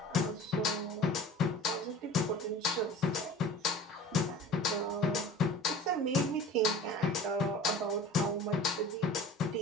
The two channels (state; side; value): normal; both; correlation 0.41